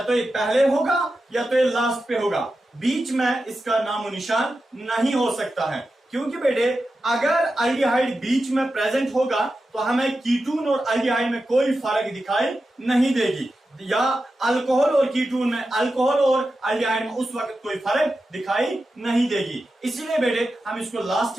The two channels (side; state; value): both; normal; correlation 0.91